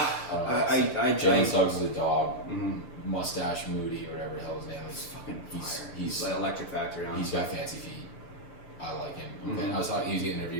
I Jalen Suggs is a dog. mhm. Mustache Moody, whatever the hell his name is. Fucking He's- fire. he's- like Electric Factory on. He's got fancy feet. I like him. Okay. Mhm. I was talking. He was getting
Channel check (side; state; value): right; late; 6.8 ms